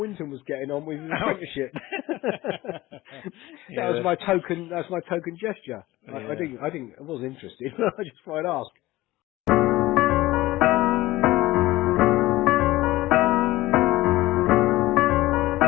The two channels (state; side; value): quieter; right; 17.9 dB